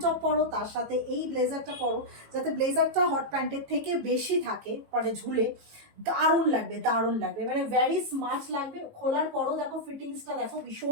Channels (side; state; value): left; late; 18 ms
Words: টপ পরো, তার সাথে এই ব্লেজারটা পরো, যাতে ব্লেজারটা হট প্যান্টের থেকে বেশি থাকে, মানে ঝুলে, দারুণ লাগবে, দারুণ লাগবে, মানে ভেরি স্মার্ট লাগবে। খোলার পরও দেখো ফিটিংসটা দেখো,